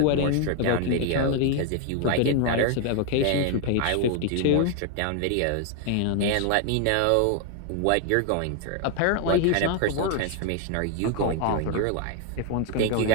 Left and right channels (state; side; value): different; both; correlation 0.00